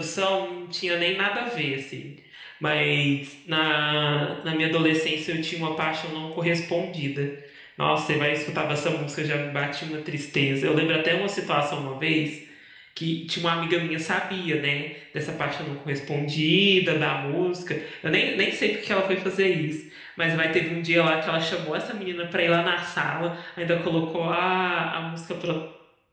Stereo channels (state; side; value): identical; both; correlation 1.00